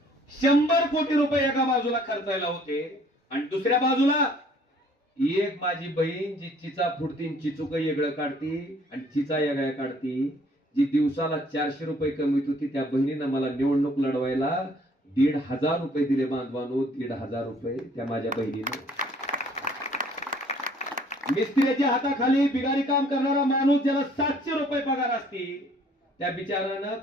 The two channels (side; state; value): both; normal; correlation 0.58